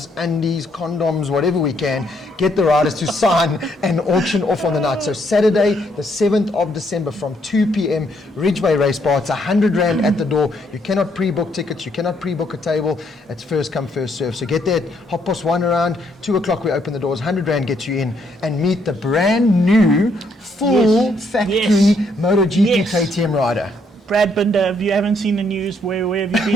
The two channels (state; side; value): normal; both; correlation 0.72